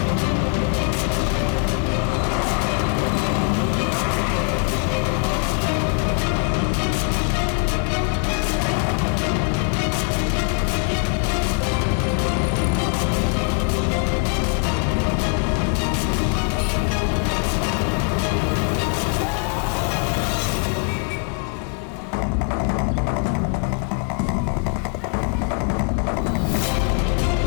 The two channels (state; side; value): quieter; right; 36.3 dB